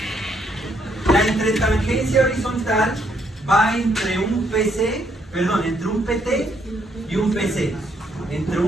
La entretangencia horizontal va entre un entre un PT y un PC. Entre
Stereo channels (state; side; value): normal; both; correlation 0.72